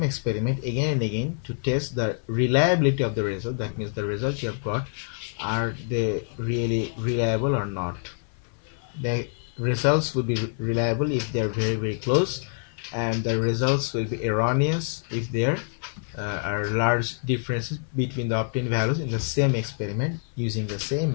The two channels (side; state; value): right; silent; 61 dB below the other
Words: experiment again and again to test the reliability of the result. That means the results you have got, are they really reliable or not? The results will be reliable if they are very, very close, and the results will be erroneous if there are large differences between the obtained values in the same experiment using the